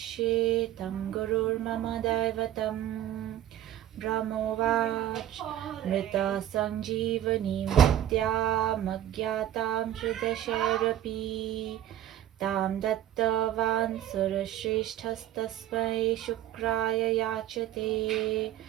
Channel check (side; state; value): left; quieter; 12.2 dB